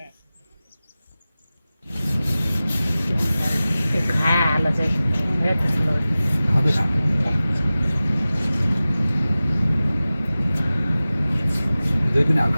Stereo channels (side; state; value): both; inverted; correlation -0.97